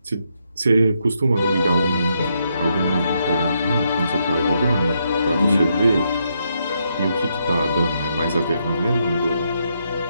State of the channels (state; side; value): inverted; both; correlation -0.78